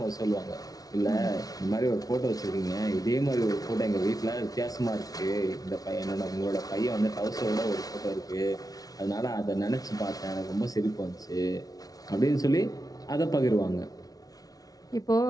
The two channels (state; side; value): late; right; 0.18 ms